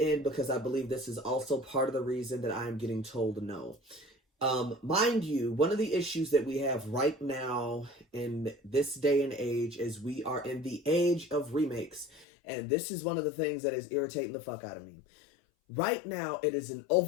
because I believe this is also part of the reason that I am getting told no. Mind you, one of the issues that we have right now in this day and age is we are in the age of remakes. And this is one of the things that is irritating the fuck out of me. Right now, it is an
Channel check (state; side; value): drops out; right; at 12.2 s